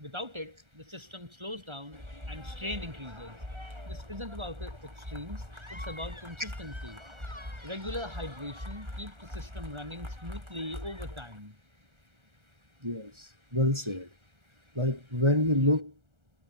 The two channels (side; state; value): left; late; 1.3 ms